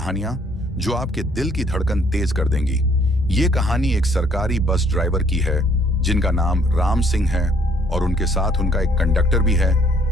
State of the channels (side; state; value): both; normal; correlation 0.63